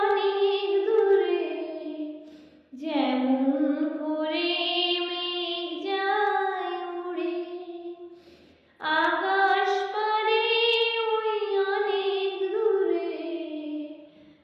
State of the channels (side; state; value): both; identical; correlation 1.00